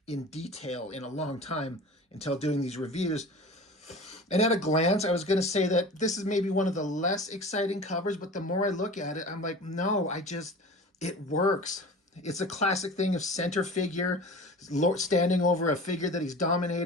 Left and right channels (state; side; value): normal; both; correlation 0.37